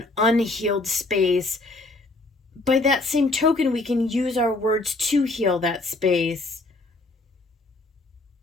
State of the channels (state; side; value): quieter; right; 3.0 dB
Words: unhealed space, by that same token, we can use our words to heal that space.